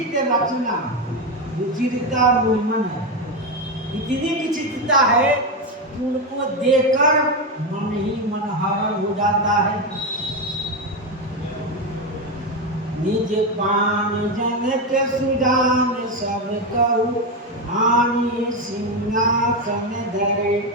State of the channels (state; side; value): normal; both; correlation 0.11